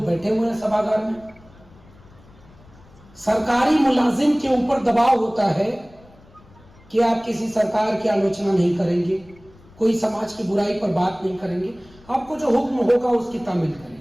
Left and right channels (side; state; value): left; noise; rumble, 25 dB below the sound